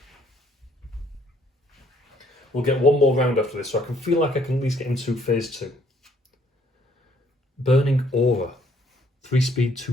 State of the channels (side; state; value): both; normal; correlation 0.64